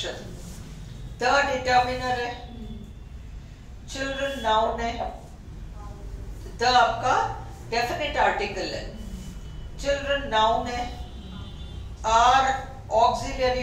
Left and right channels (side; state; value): both; identical; correlation 1.00